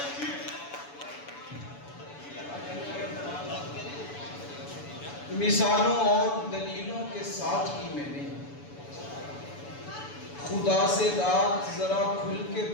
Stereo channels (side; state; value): right; late; 7.0 ms